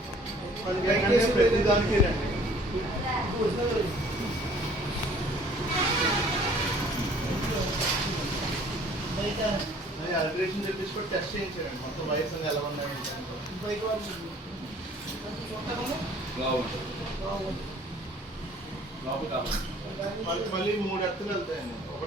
ప్రతి దానికి రండి. అల్ట్రేషన్ చెప్పించుకొని టెస్ట్ చేయించారండి. మొత్తం వైర్స్ అన్ని ఎలా ఉన్నాయి మళ్ళీ 3 ఎత్తులు వెళ్తాయండి.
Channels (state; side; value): normal; both; correlation 0.54